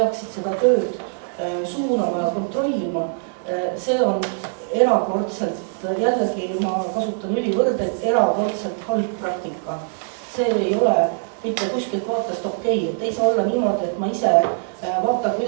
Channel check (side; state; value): left; silent; 64 dB below the other